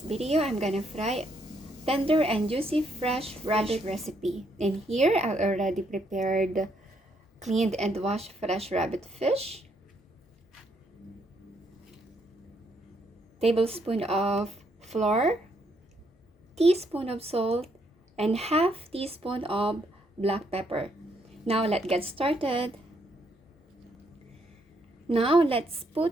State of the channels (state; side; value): normal; both; correlation 0.73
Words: video, I'm gonna fry tender and juicy fresh rabbit recipe. In here, I already prepared cleaned and washed fresh rabbit fish, tablespoon of flour, teaspoon of salt, and half teaspoon of black pepper. Now let's get started. Now let's put